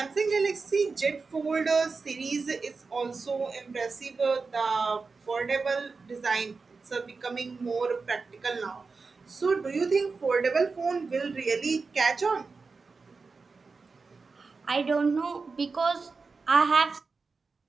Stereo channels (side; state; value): left; quieter; 4.4 dB